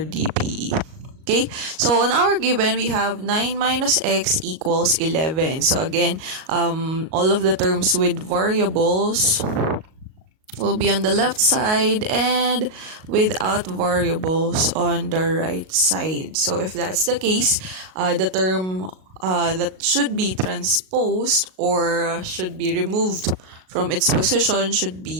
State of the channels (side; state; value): left; late; 38 ms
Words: DPE. Okay? So, on our given, we have 9 minus x equals 11. So, again, all of the terms with variables will be on the left side and without variables on the right side. So, if that's the case, the term that should be transposed or should be removed from its position should